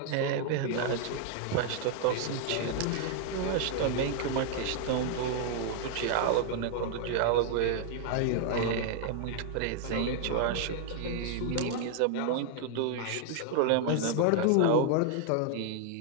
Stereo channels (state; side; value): different; both; correlation 0.00